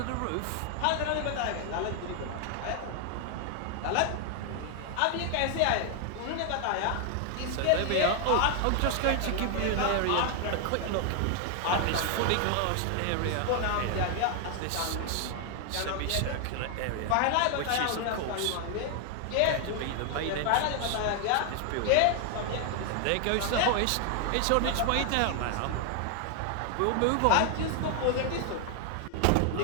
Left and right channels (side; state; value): both; different; correlation 0.00